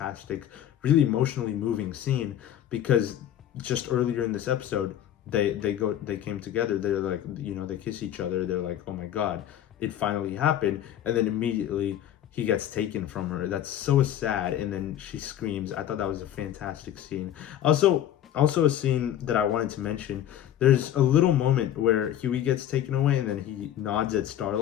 really emotionally moving scene, because just earlier in this episode, they came together. They're like, they kiss each other. They're like, oh my god, it finally happened. And then immediately he gets taken from her. That's so sad. And then she screams. I thought that was a fantastic scene. Also a scene that I wanted to mention, there's a little moment where Huey gets taken away and then he nods at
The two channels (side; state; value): right; quieter; 11.2 dB